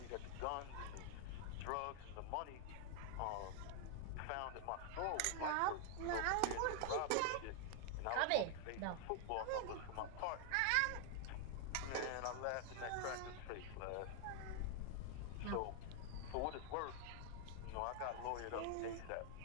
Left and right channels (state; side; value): different; both; correlation 0.00